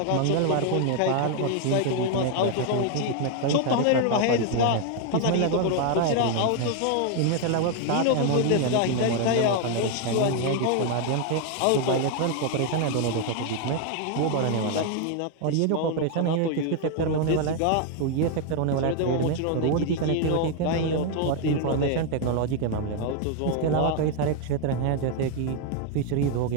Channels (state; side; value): different; both; correlation 0.00